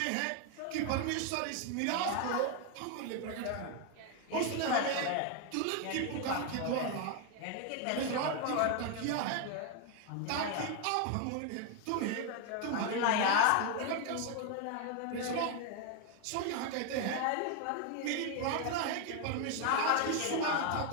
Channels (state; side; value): different; both; correlation 0.01